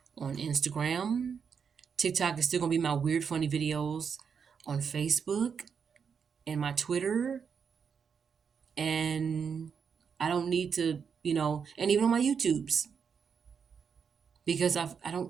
on Instagram. TikTok is still gonna be my weird, funny videos on Facebook. and my Twitter, and I don't need to, and even on my YouTubes, because I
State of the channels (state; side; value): quieter; left; 6.5 dB